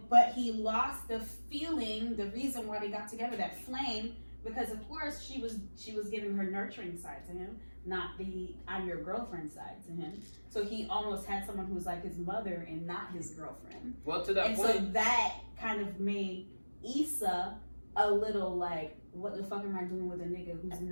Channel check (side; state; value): both; inverted; correlation -1.00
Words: but he lost the feeling, the reason why they got together, that flame, because of course she was giving her nurturing side to him, not the I'm your girlfriend side to him. So he almost had someone who was like his mother and not his girlfriend. Well, to that And point, so that kind of made Issa a little like, what the fuck am I doing with a nigga who's